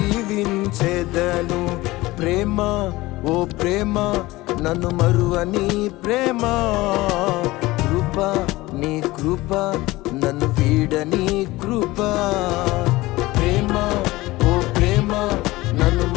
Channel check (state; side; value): quieter; right; 19.5 dB